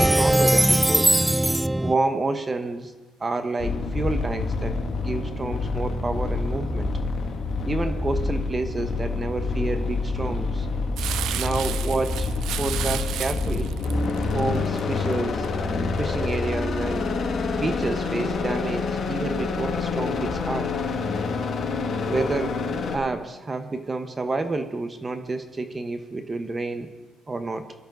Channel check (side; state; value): both; normal; correlation 0.85